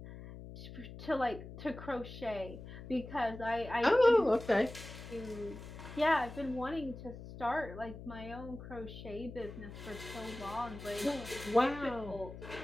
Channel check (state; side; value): noise; left; hum, 12 dB below the sound